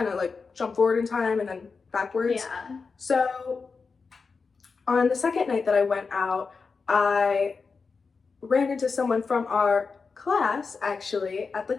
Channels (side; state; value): right; quieter; 4.8 dB